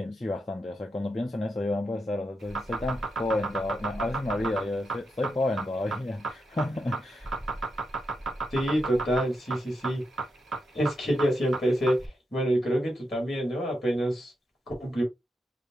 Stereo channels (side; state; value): both; normal; correlation 0.85